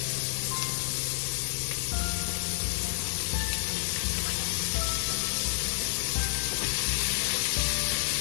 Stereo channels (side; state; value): right; silent; 59 dB below the other